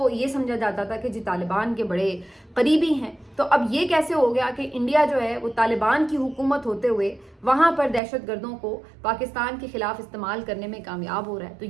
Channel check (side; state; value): left; drops out; at 8.0 s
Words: ये समझा जाता था कि जी तालिबान के बड़े करीबी हैं। तो अब ये कैसे हो गया कि इंडिया जो है वो तालिबान की हुकूमत होते हुए वहाँ पर दहशतगर्दों को पाकिस्तान के खिलाफ इस्तेमाल करने में कामयाब हो रहा है? तो